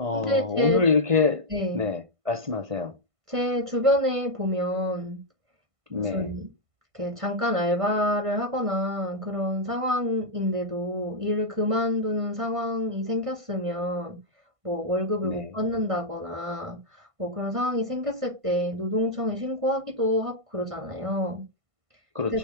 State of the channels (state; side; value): late; left; 1.5 ms